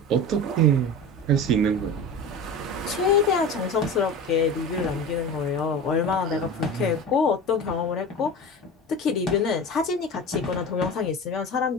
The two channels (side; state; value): both; normal; correlation 0.30